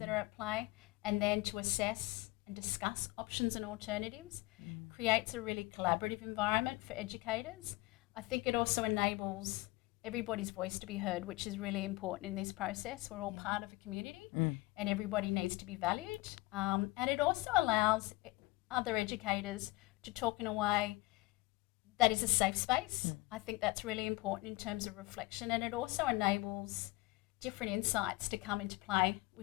are at play, and then to assess and discuss options and alternatives creates a really collaborative environment for educators. I think it also enables everybody's voice to be heard, which is really important in this process. We're all part of a community and everybody needs to be valued. And it also allows other educators to talk in a way that is a safe space. I think that's really important in terms of reflection, and it also enables different insights to come into play,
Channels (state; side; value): quieter; right; 21.3 dB